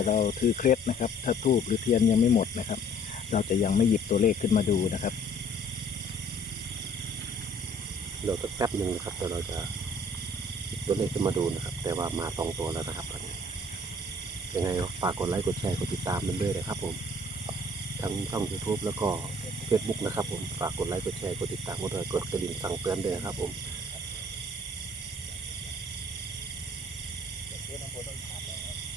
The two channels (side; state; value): both; normal; correlation 0.56